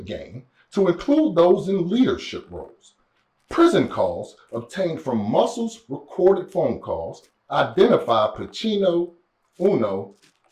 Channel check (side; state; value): both; identical; correlation 1.00